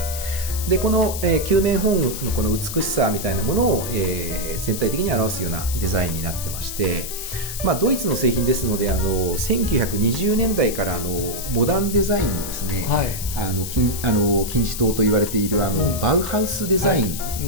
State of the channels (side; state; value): left; noise; hiss, 7 dB below the sound